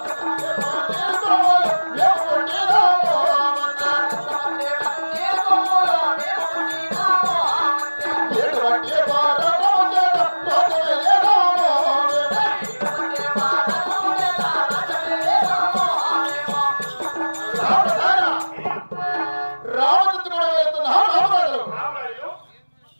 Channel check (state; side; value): inverted; both; correlation -1.00